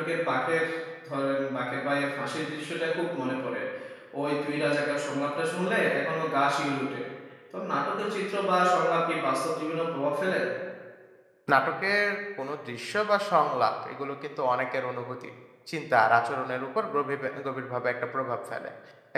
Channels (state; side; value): identical; both; correlation 1.00